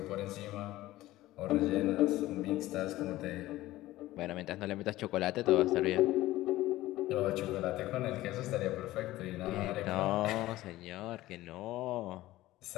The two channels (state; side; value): quieter; right; 16.5 dB